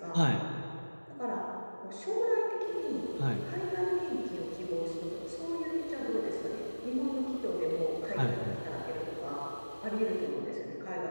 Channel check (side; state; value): both; inverted; correlation -1.00